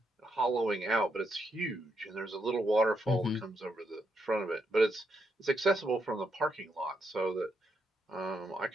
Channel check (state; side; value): normal; both; correlation 0.80